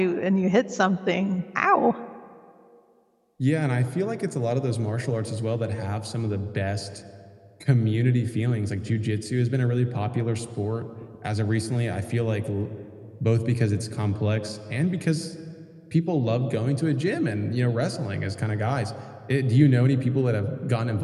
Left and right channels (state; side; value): identical; both; correlation 1.00